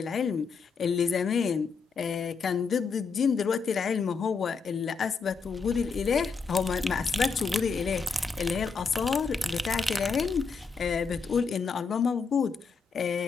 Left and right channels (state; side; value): quieter; right; 5.1 dB